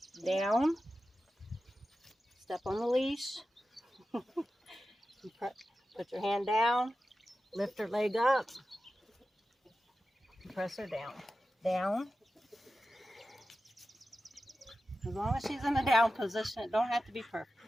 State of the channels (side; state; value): both; normal; correlation 0.93